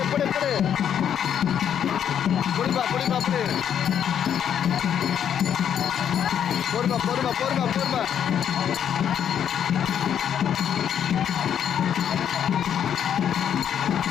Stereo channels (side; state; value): right; quieter; 9.0 dB